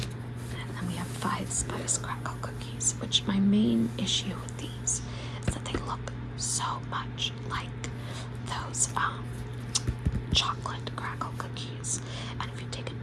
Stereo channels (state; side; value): identical; both; correlation 1.00